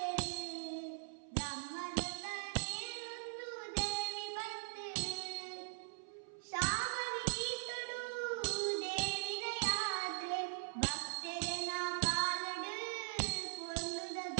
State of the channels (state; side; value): silent; left; 50 dB below the other